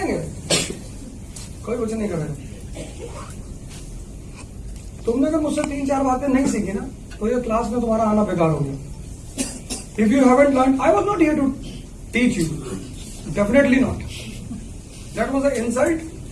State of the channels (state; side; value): identical; both; correlation 1.00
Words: कोई कुछ नहीं करेगा। तुमने अगर मुझसे 3-4 बातें नहीं सीखी ना तो ये क्लास में तुम्हारा आना बेकार हो गया। If you haven't learn, I was not here to teach you, definitely not. That was a insult